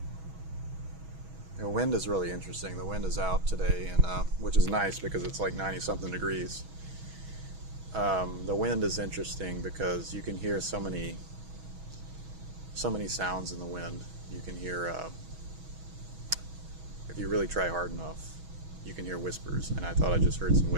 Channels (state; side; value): late; left; 6.2 ms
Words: The wind is really interesting. The wind is out today, and which is nice because it's like 90-something degrees. The wind is interesting because you can hear so many sounds in the wind. You can hear, if you really try hard enough, you can hear whispers. And I thought I just heard some